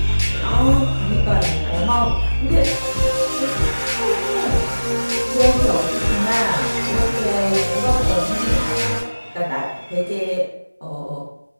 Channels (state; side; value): inverted; both; correlation -1.00